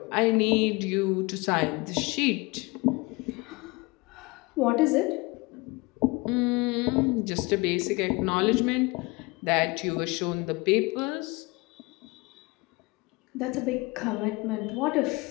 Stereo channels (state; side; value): quieter; right; 25.0 dB